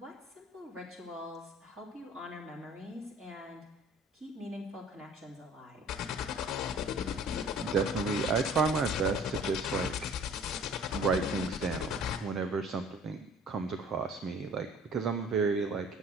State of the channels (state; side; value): normal; both; correlation 0.50